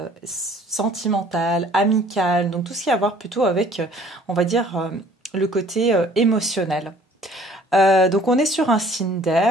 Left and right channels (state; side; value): normal; both; correlation 0.54